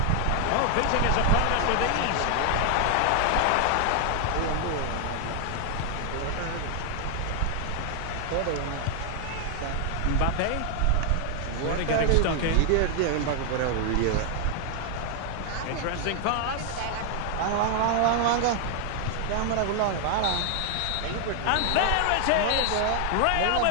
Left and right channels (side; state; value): both; different; correlation 0.00